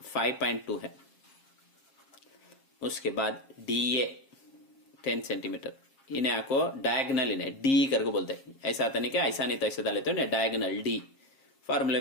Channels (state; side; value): late; right; 7.4 ms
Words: 5.2 है। उसके बाद DA 10 सेंटीमीटर। इन्हें आपको डायगनल इन्हें D करके बोलते हैं। ऐसा आता नहीं क्या, ऐसा नहीं तो ऐसे डाल लेते हो ना, डायगनल D फॉर्मूले